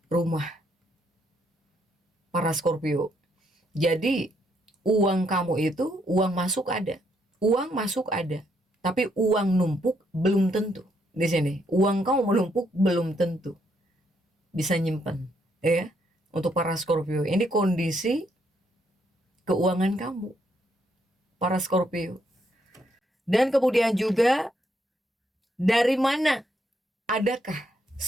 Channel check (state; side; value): normal; both; correlation 0.74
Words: rumah. Para Scorpio. Jadi uang kamu itu, uang masuk ada. Uang masuk ada. Tapi uang numpuk belum tentu. Di sini, uang kamu menumpuk belum tentu bisa nyimpen, ya. Untuk para Scorpio, ini kondisi keuangan kamu, para Scorpio. Dan kemudian juga dari mana adakah